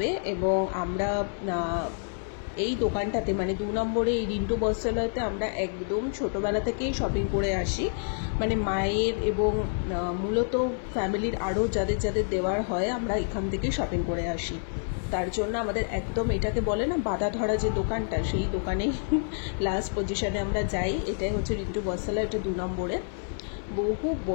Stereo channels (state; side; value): silent; right; 59 dB below the other